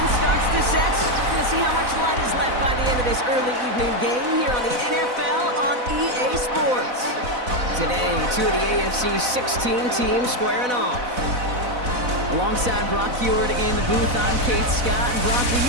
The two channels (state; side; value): late; left; 4.0 ms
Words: starts to set. We're going to see how much light is left by the end of this early evening game here on the NFL on EA Sports. Today, two of the AFC's 16 teams squaring off. Alongside Brock Heward in the booth, I'm Kate Scott. And Brock, we